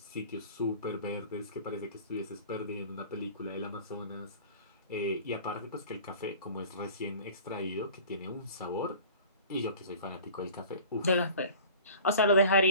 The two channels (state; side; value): inverted; both; correlation -0.43